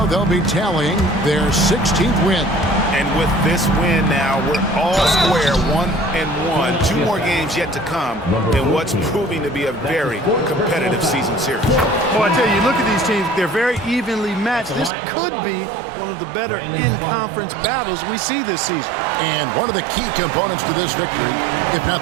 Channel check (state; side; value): drops out; left; at 14.9 s